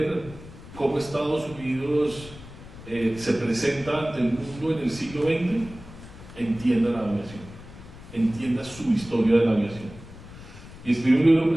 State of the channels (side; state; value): left; noise; rumble, 16 dB below the sound